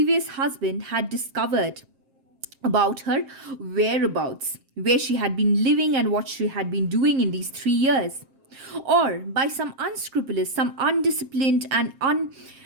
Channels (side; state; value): left; late; 7.5 ms